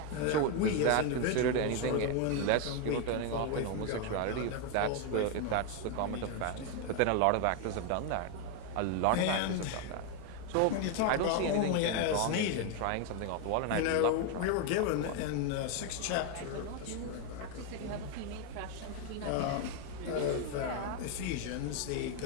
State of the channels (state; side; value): different; both; correlation 0.01